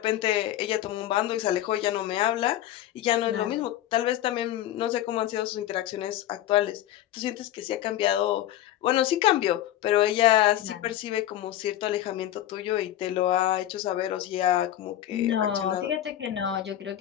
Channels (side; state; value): right; quieter; 12.7 dB